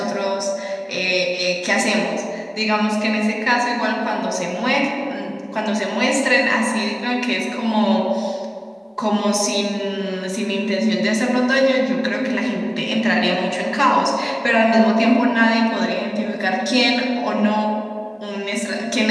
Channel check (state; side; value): identical; both; correlation 1.00